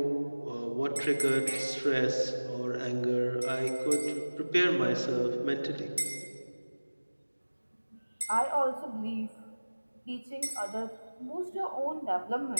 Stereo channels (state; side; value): inverted; both; correlation -1.00